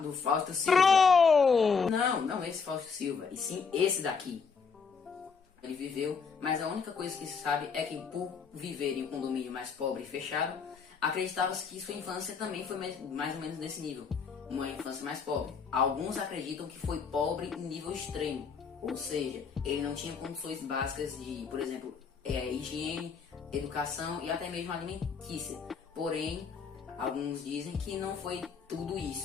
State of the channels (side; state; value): right; quieter; 5.6 dB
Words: do Fausto Silva. Não esse Fausto Silva, e sim esse daqui. Ele viveu, mas a única coisa que se sabe é que por viver em um condomínio mais pobre e fechado, acreditava-se que sua infância também foi mais ou menos nesse nível. Uma infância mais pobre. Alguns acreditam que foi pobre em nível extremo. Ou seja, ele não tinha condições básicas de, por exemplo, higiene, educação e até mesmo alimentícia. Porém, alguns dizem que não foi tudo